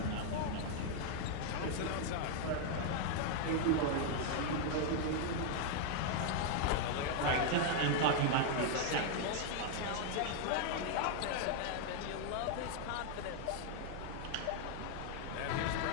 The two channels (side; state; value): both; different; correlation 0.00